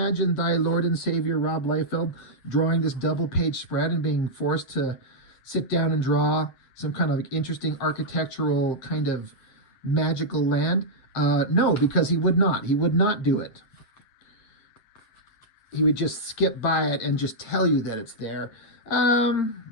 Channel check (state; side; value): late; right; 8.9 ms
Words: thy Lord and Savior Rob Liefeld drawing this double page spread and being forced to sit down and draw some kind of interesting architectural kind of magical land? No, because he would not. He would not do it. He would just skip by it and just tell you that it's there.